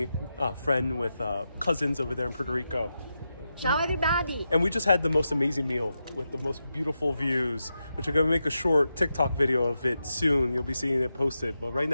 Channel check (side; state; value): both; inverted; correlation -0.88